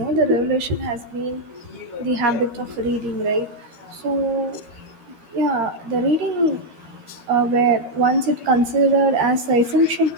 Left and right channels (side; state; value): left; late; 13 ms